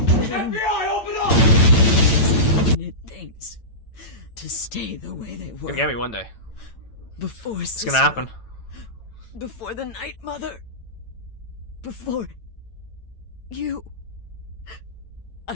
open up! Wanted things to stay the way they were. Gonna get me one day. Before It's gonna happen. Before the Night Mother. Before you.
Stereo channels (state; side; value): late; right; 9.0 ms